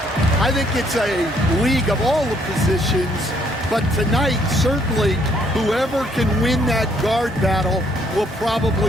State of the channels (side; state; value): both; normal; correlation 0.68